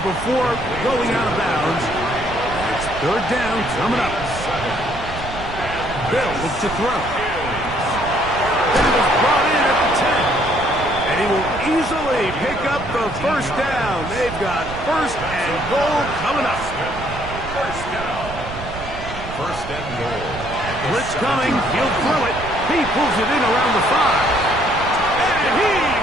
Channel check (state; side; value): noise; right; rumble, 10 dB below the sound